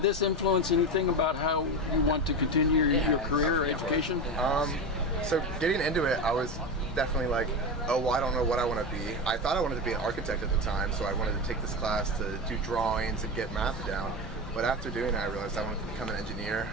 this influence anything about how you want to continue your career or education? So getting into it, I was definitely like, oh, well, I don't know what I want to be. I thought I wanted to be an architect at the time, so I wanted to take this class to do drawings and get math down. But after doing it, I realized I wanted to become an engineer,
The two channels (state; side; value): normal; both; correlation 0.19